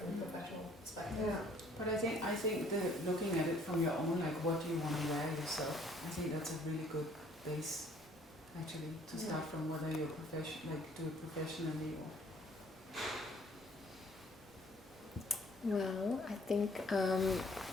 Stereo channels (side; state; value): both; normal; correlation 0.59